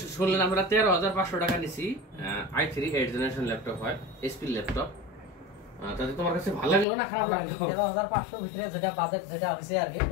শুনলেন আমরা 13,500 টাকা নিছি। i3 8 জেনারেশন ল্যাপটপ হয়, এসপি ল্যাপটপ। তাতে তোমার কাছে ভালো লাগলো না খারাপ লাগলো? 13,500 ভিতরে যেটা বাজেট যেটা হইছে আর কি,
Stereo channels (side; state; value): right; drops out; at 6.9 s